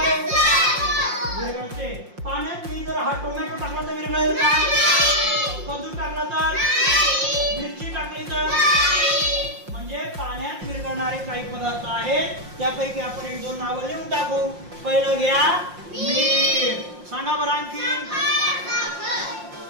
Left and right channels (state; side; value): late; left; 5.6 ms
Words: रे? विरघळते. पाण्यात मी जर हा टोमॅटो टाकला तर विरघळेल का? कद्दू टाकला तर? मिरची टाकली तर? म्हणजे पाण्यात विरघळणारे काही पदार्थ आहेत. त्यापैकी आपण एक दोन नावं लिहून टाकू. पहिलं घ्या मीठ. सांगा बरं आणखी.